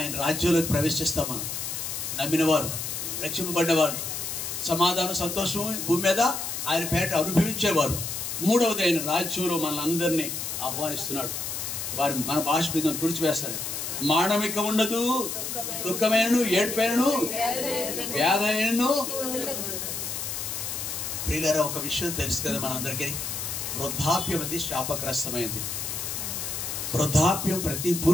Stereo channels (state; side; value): noise; left; hiss, 4 dB below the sound